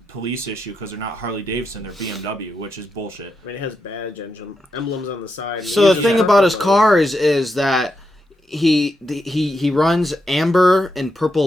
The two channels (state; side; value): normal; both; correlation 0.84